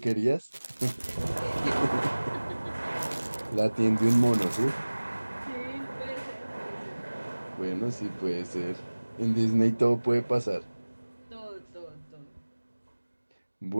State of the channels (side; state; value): both; inverted; correlation -1.00